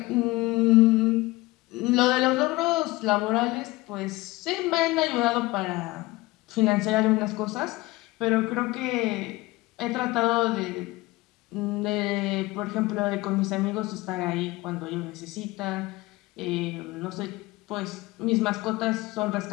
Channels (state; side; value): quieter; right; 20.8 dB